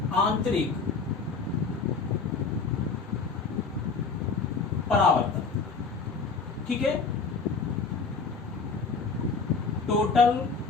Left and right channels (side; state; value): right; quieter; 4.7 dB